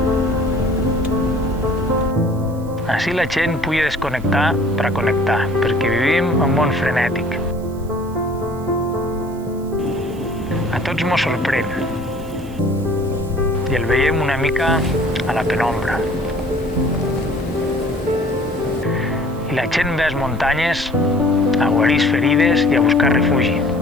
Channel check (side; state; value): right; noise; hiss, 26 dB below the sound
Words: Així la gent pugui desconnectar per a connectar, perquè vivim en un món frenètic. A tots mos sorprèn i el veiem una mica a la penombra. I la gent ve a les muntanyes a guarir ferides i a buscar refugi.